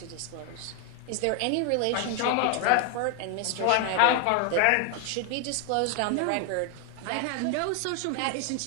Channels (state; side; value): different; both; correlation 0.01